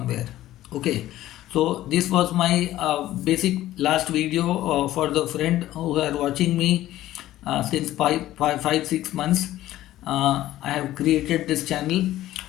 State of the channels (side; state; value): right; quieter; 14.5 dB